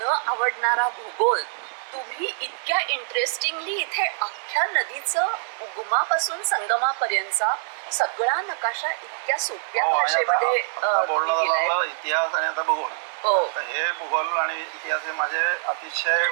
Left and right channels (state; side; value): silent; left; digital silence